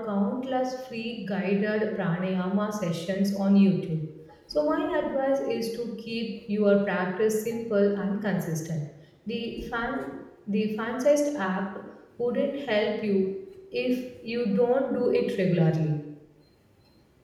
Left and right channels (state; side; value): identical; both; correlation 1.00